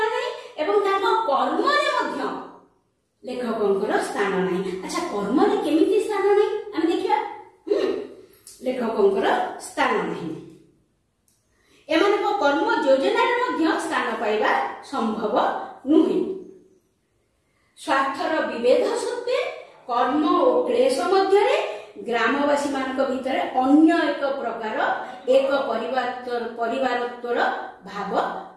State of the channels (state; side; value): identical; both; correlation 1.00